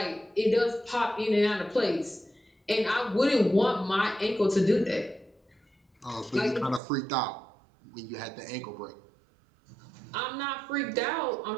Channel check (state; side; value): drops out; left; at 6.8 s